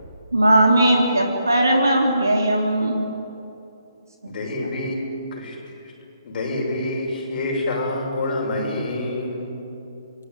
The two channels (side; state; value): both; inverted; correlation -0.77